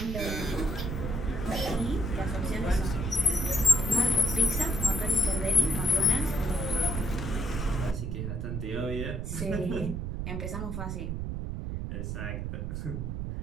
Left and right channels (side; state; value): right; noise; rumble, 3 dB below the sound